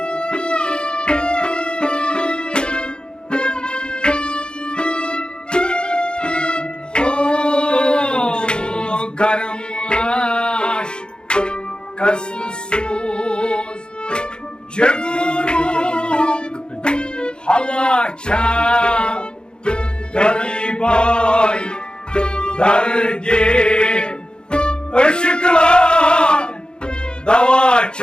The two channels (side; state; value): right; late; 0.049 ms